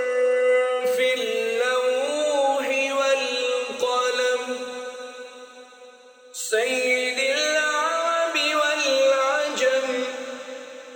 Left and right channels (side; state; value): both; identical; correlation 1.00